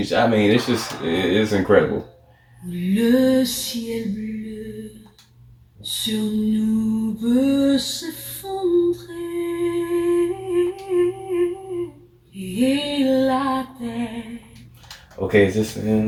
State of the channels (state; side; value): identical; both; correlation 1.00